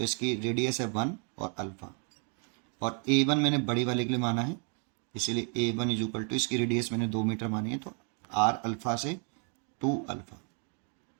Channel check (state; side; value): quieter; left; 39.9 dB